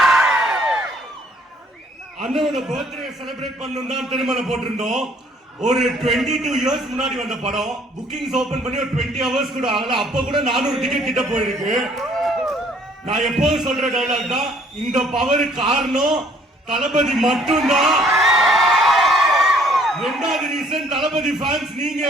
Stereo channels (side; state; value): both; normal; correlation 0.61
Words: அண்ணனோட birthday celebrate பண்ணணும் தான் திருமணம் போட்டிருந்தோம். ஒரு 22 இயர்ஸ் முன்னாடி வந்த படம். புக்கிங்ஸ் ஓபன் பண்ணி ஒரு 20 ஹவர்ஸ் கூட ஆகல. அப்ப கூட 400 டிக்கெட் கிட்ட போயிருக்கு. நான் எப்போதும் சொல்ற டயலாக் தான், இந்த பவர் காரணம் தளபதி மட்டும்தான். ரெண்டாவது ரீசன் தளபதி ஃபேன்ஸ் நீங்க